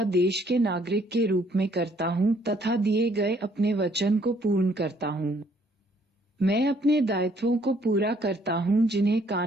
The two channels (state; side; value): normal; both; correlation 0.64